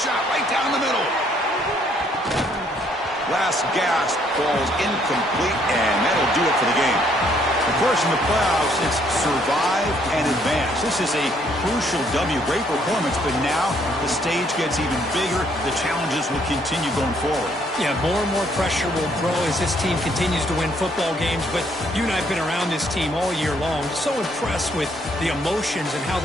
right down the middle. Last gasp falls incomplete, and that'll do it for the game. Of course, in the playoffs, it's survive and advance. This is a crucial W. Great performance, but now the stage gets even bigger. The challenges will continue going forward. Yeah, more and more pressure will grow as this team continues to win football games. But you and I have been around this team all year long. So impressed with the emotions and how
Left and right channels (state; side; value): normal; both; correlation 0.67